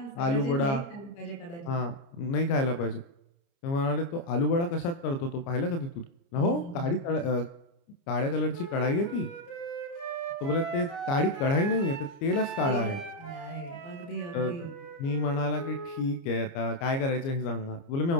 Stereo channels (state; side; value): late; right; 29 ms